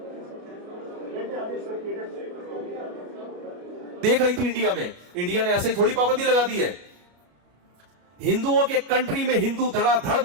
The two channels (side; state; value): left; late; 33 ms